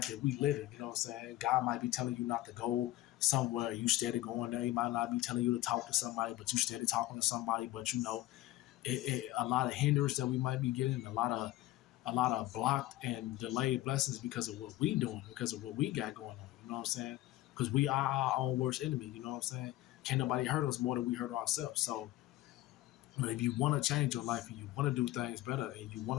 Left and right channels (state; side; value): quieter; right; 16.6 dB